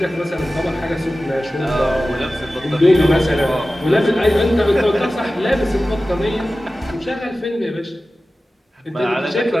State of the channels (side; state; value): both; normal; correlation 0.95